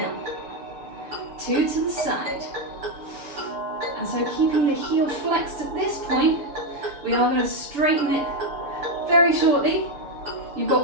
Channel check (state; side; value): late; left; 6.8 ms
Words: 2 to the side. And so keeping the heel flexed at this point, we are going to straighten it very shortly. You've